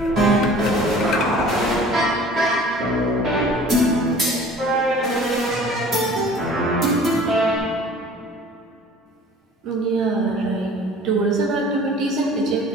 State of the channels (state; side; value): normal; both; correlation 0.47